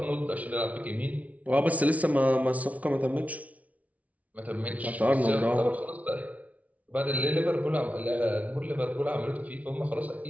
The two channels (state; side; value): late; left; 0.069 ms